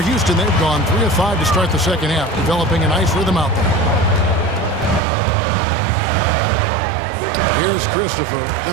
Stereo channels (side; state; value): left; drops out; at 5.0 s